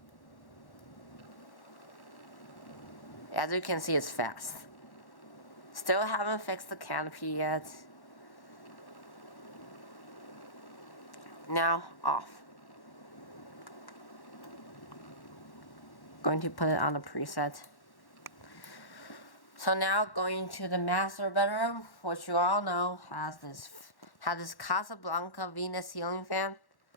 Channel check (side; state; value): right; late; 1.1 ms